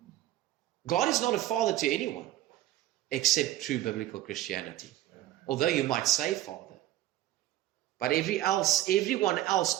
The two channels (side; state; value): left; quieter; 14.5 dB